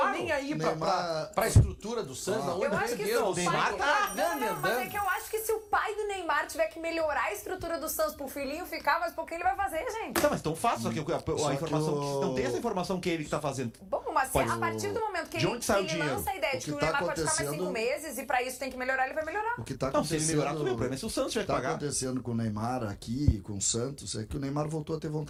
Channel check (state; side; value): identical; both; correlation 1.00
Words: Nem aí pra estrutura do Santos. Eu acho que o Neymar tá mas é que eu acho que se o pai do Neymar tiver que melhorar a estrutura do Santos pro filhinho ficar, mas por que ele vai fazer, gente? Não, mas tão fácil, só que a informação... Não tem essa informação que ele que tá fazendo. Bom, mas a partir do momento que ele lança a ideia de que o Neymar pode ficar mais 5 meses e pra isso tem que melhorar, ele vai melhorar. O que tá não, se ele melhorar, tudo bem. O acontecendo, problema é se o Santos tiver que pagar. O que tá acontecendo com o Neymar aqui, com o Santos, é que o Neymar voltou a ter